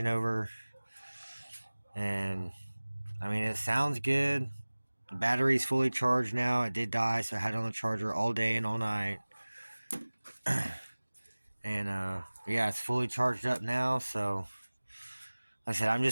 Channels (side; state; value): both; inverted; correlation -1.00